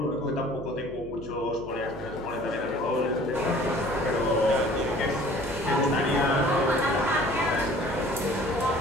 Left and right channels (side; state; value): right; noise; hum, 13 dB below the sound